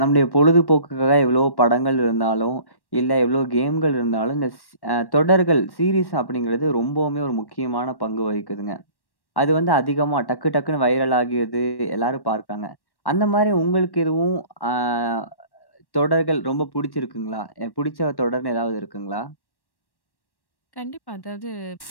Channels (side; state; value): right; late; 1.1 ms